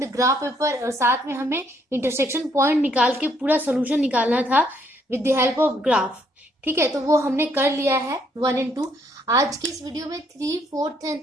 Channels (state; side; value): normal; both; correlation 0.69